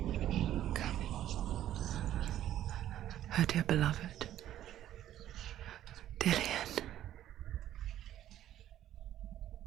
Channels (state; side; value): quieter; left; 12.2 dB